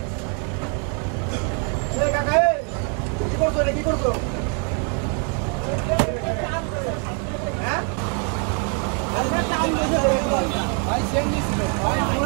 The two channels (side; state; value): left; quieter; 39.8 dB